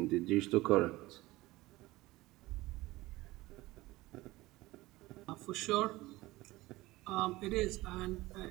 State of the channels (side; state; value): left; quieter; 19.2 dB